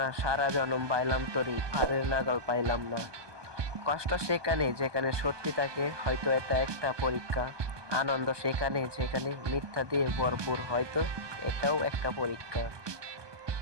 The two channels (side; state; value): left; late; 1.2 ms